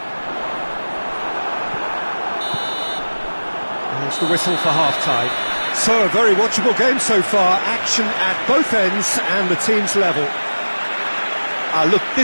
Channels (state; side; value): inverted; both; correlation -1.00